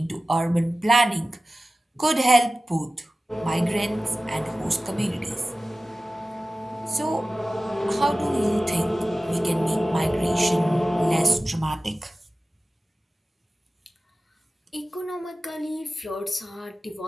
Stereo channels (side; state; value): both; normal; correlation 0.96